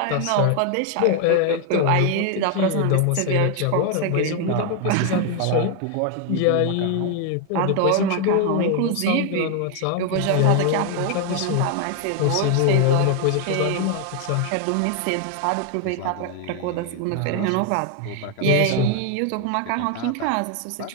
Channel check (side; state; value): both; different; correlation 0.00